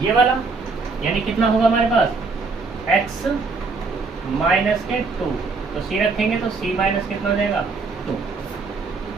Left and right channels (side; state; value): left; quieter; 4.2 dB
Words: ये वाला, यानी कितना होगा हमारे पास x माइनस के 2, तो c रखेंगे तो c माइनस कितना हो जाएगा 2,